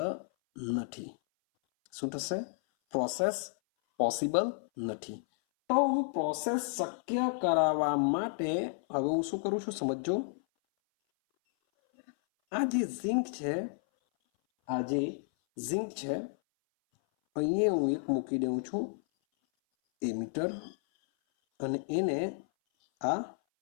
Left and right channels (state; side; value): silent; right; 57 dB below the other